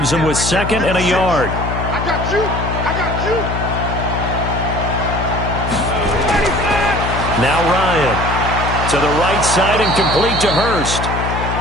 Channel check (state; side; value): noise; left; hum, 3 dB below the sound